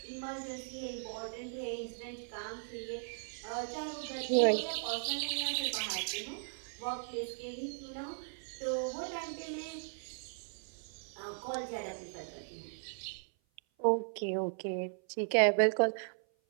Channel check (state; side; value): silent; left; 53 dB below the other